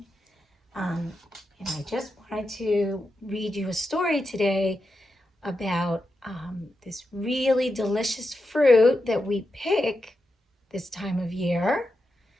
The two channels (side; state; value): both; normal; correlation 0.88